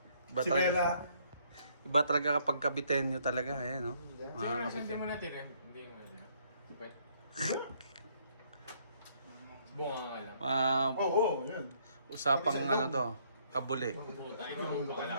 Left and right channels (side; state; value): both; inverted; correlation -0.67